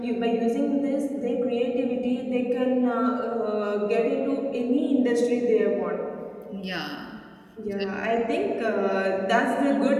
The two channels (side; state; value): both; identical; correlation 1.00